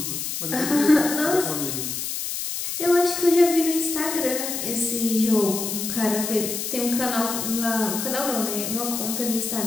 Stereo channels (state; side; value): noise; left; hiss, 4 dB below the sound